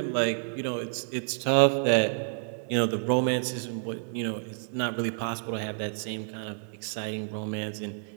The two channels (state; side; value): silent; left; 58 dB below the other